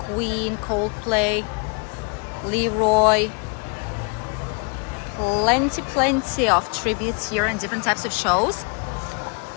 Coldplay, Leroy. Plenty of tributes here and different types of shows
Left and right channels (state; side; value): quieter; right; 37.1 dB